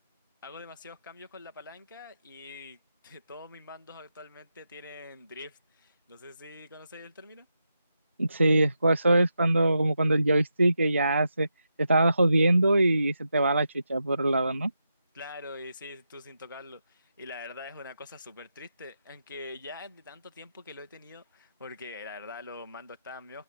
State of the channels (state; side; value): inverted; both; correlation -0.86